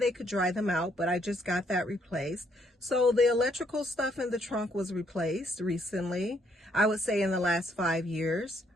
could dry them out, but I just got that replaced. So the electrical stuff in the trunk was replaced recently, I would say in the last 5 years.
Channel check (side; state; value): both; normal; correlation 0.70